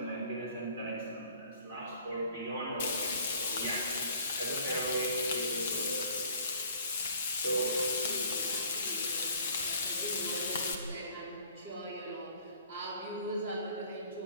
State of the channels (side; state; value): both; inverted; correlation -0.53